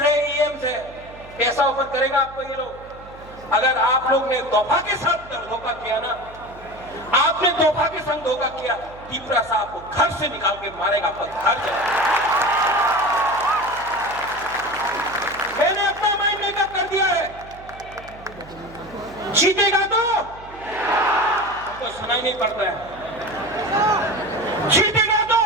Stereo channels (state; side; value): noise; right; hum, 19 dB below the sound